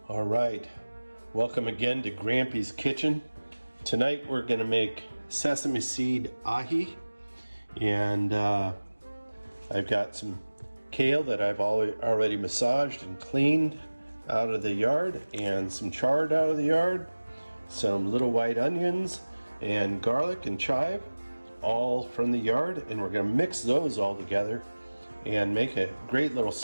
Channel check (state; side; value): inverted; both; correlation -1.00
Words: All right, welcome again to Grampie's Kitchen. Tonight we're going to make sesame seed ahi, and I've got some kale that I've already massaged and cleaned out of the yard, and some chard out of the yard, some little white onions and garlic and chive, all from the yard, and we're going to mix those all together and make a great little